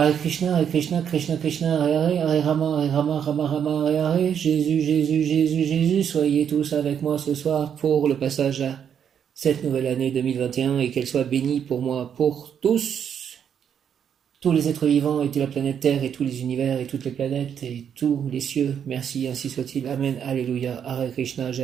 Krishna, Krishna, Krishna, Hare Hare, Hare Rama, Rama, Rama, Hare Hare, Jésus, Jésus, Jésus, Jésus, soyez tous avec moi ce soir pour le passage à cette nouvelle année 2021 et qu'elle soit bénie pour moi, pour tous les êtres vivants et toute la planète Terre et tous les univers et toutes les planètes et tous les cieux. Merci, ainsi soit-il. Amen, Alléluia, Hare Krishna,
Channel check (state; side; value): quieter; left; 8.2 dB